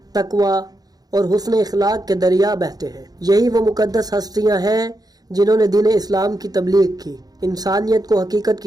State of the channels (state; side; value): late; left; 0.19 ms